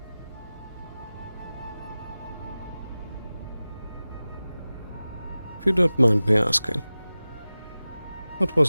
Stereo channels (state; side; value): inverted; both; correlation -0.97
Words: If you don't mind me asking, what